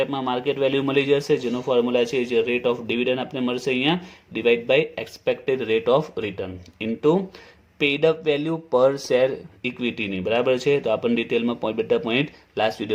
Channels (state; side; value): identical; both; correlation 1.00